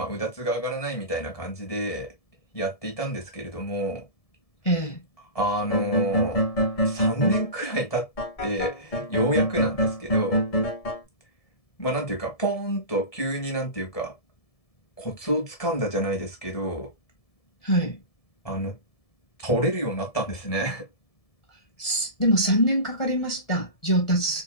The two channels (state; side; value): late; right; 1.7 ms